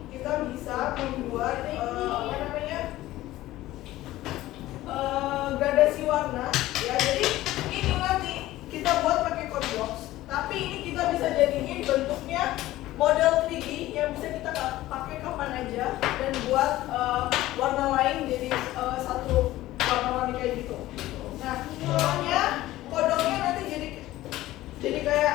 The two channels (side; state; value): right; quieter; 16.0 dB